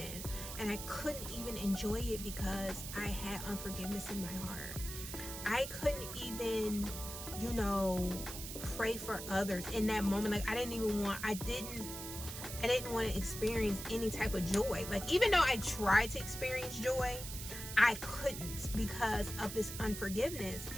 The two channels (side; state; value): right; noise; hiss, 8 dB below the sound